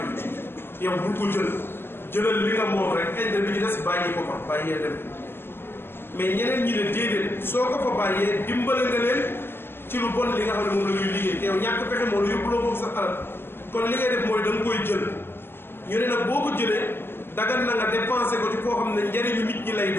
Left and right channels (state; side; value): late; right; 0.11 ms